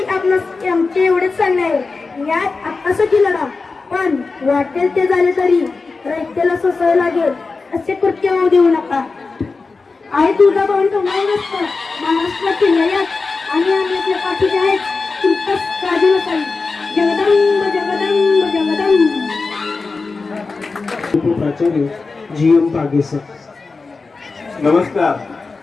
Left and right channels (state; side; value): quieter; right; 4.1 dB